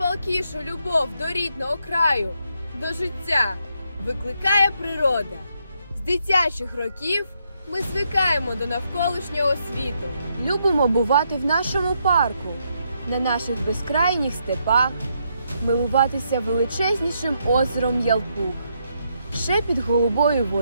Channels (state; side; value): inverted; both; correlation -0.77